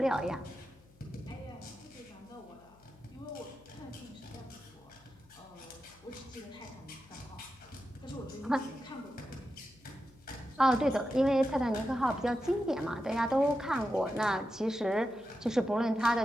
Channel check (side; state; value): left; noise; hum, 28 dB below the sound